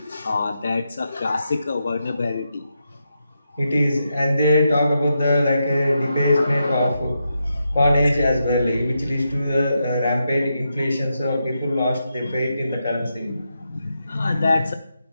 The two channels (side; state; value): both; inverted; correlation -0.85